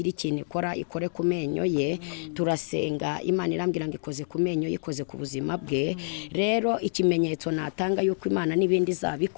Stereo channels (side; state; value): right; silent; digital silence